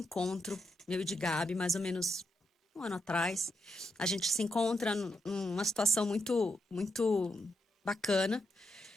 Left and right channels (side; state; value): both; normal; correlation 0.83